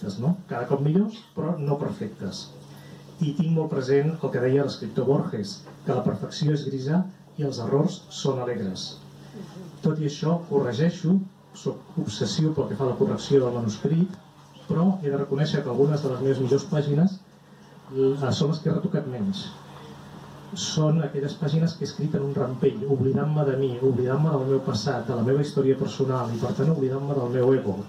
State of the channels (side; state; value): both; identical; correlation 1.00